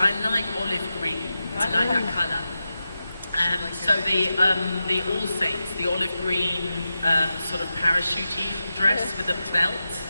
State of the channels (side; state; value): both; inverted; correlation -0.91